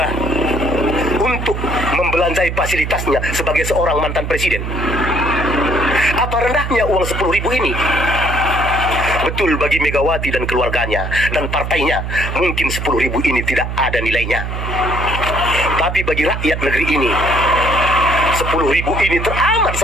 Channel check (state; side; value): noise; right; hum, 4 dB below the sound